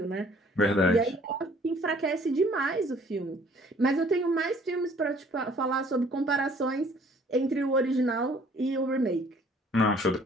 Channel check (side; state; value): both; normal; correlation 0.57